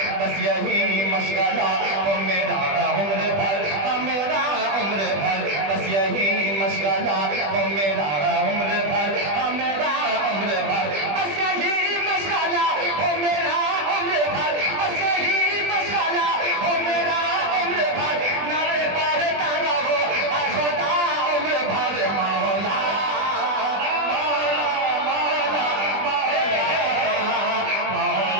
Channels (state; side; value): late; left; 20 ms